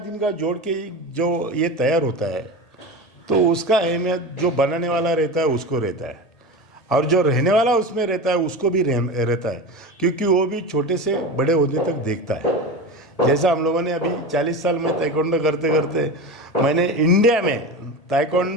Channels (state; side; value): late; right; 1.8 ms